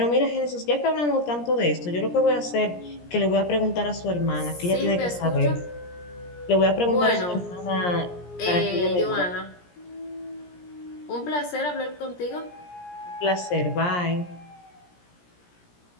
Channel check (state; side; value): late; right; 17 ms